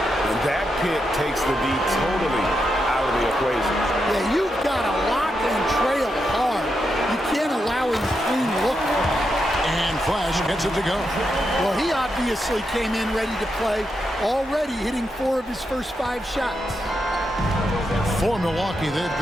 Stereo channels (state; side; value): normal; both; correlation 0.84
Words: And that pick takes the D totally out of the equation. Yeah, you've got to lock and trail hard. You can't allow him to clean look. And Flash gets it to go. Well, he obviously came in ready to play, already hitting 4 of his first 5 shots. For Milwaukee, they've